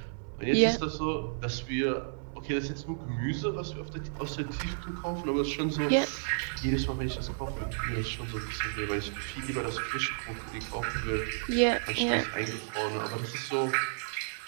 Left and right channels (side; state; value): left; silent; 57 dB below the other